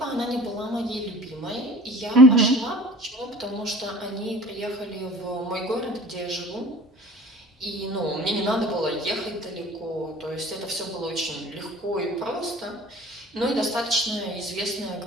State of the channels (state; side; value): normal; both; correlation 0.44